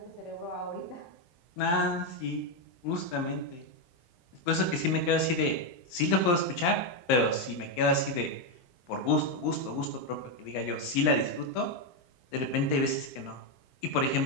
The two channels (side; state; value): right; late; 23 ms